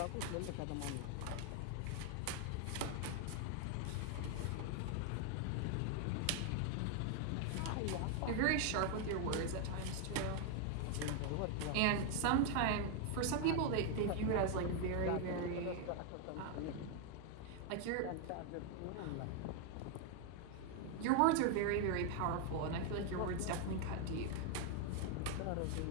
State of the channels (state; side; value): different; both; correlation 0.00